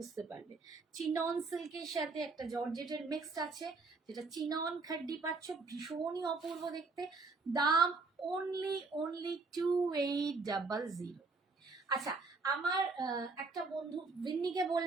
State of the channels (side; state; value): left; quieter; 4.0 dB